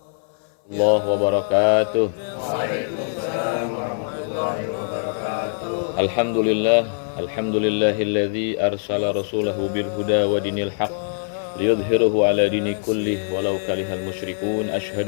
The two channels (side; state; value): right; silent; 60 dB below the other